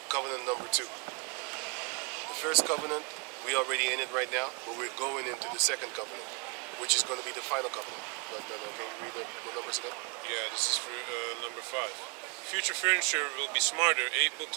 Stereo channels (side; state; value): left; quieter; 33.2 dB